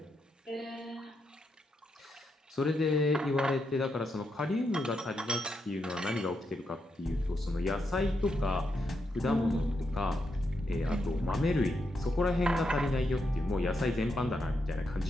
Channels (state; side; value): normal; both; correlation 0.82